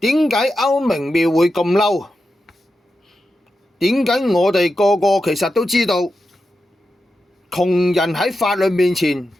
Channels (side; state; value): both; normal; correlation 0.89